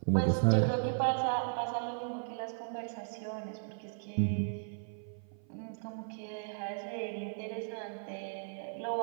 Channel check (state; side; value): silent; left; 54 dB below the other